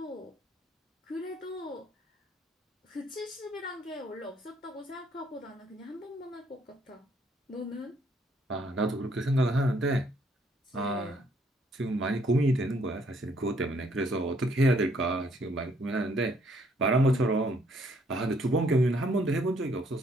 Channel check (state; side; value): normal; both; correlation 0.67